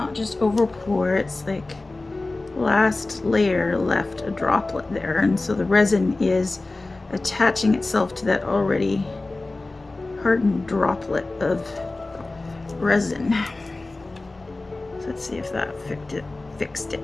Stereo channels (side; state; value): right; quieter; 3.1 dB